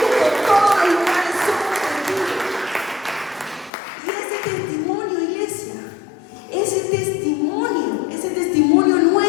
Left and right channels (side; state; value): right; drops out; at 3.7 s